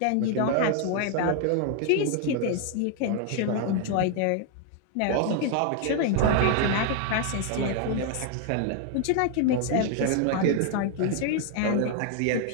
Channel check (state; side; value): different; both; correlation 0.00